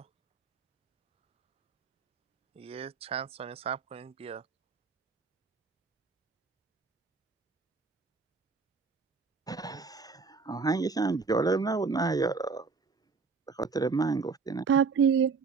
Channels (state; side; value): quieter; left; 4.8 dB